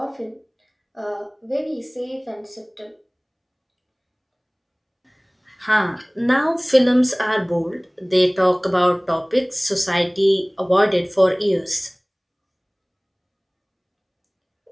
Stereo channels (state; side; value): identical; both; correlation 1.00